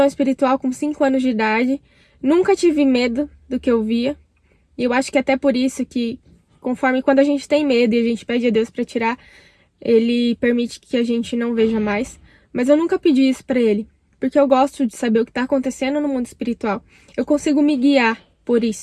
espiritual com 5 anos de idade. Nunca tive medo do que eu via. E eu acho que até por isso que, conforme quando a gente tem medo e a gente pede a Deus para tirar, ele permite que a gente não veja mais. Mas eu nunca pedi isso para ele, porque eu gosto de saber o que está acontecendo no mundo espiritual. Eu consigo me guiar por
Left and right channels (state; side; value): identical; both; correlation 1.00